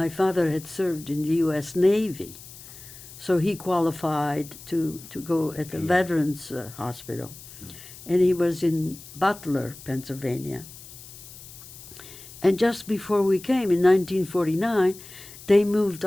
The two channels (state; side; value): noise; left; hiss, 17 dB below the sound